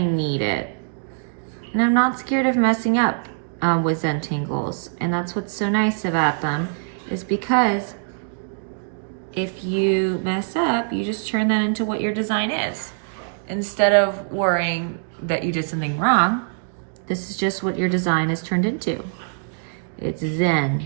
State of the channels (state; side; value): silent; left; digital silence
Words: need it. And I'm not scared of messing up with Zentangles. And that's what's so nice about them, is because if you mess up, you just turn that into what your design is. Instead of worrying that you did something wrong, this is just what your design is turned into. It's